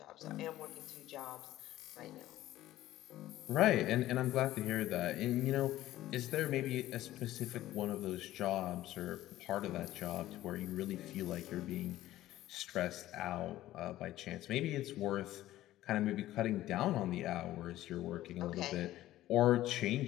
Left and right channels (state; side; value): quieter; right; 14.8 dB